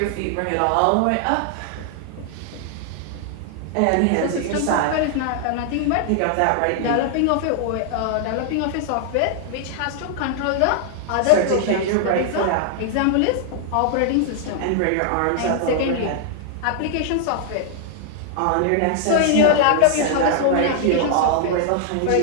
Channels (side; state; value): both; different; correlation -0.01